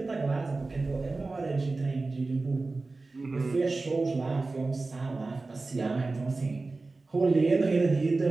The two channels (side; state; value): left; quieter; 3.5 dB